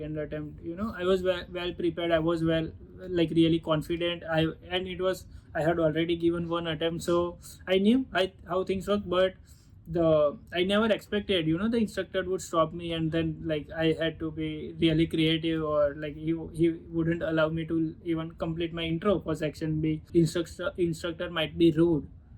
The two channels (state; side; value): identical; both; correlation 1.00